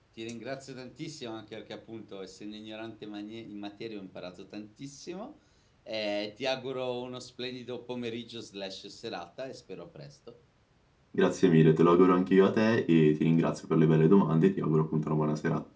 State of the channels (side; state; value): both; identical; correlation 1.00